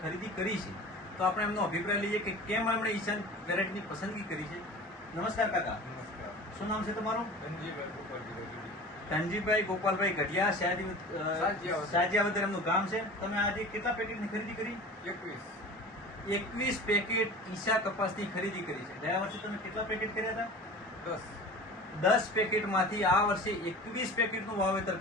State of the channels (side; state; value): both; normal; correlation 0.38